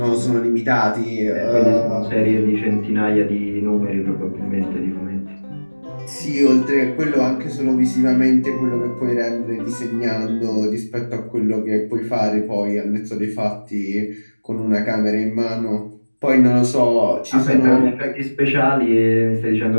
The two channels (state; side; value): inverted; both; correlation -1.00